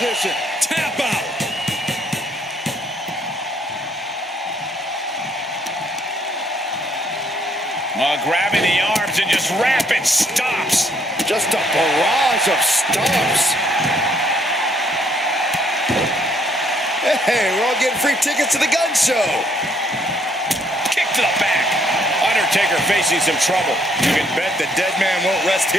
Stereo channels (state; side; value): normal; both; correlation 0.67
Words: Tap out. Grabbing the arms and just rapid stops. Just a barrage of stomps. Hey, we're all getting free tickets to the gun show. Kick to the back. Undertaker facing some trouble. You can bet the Deadman won't rest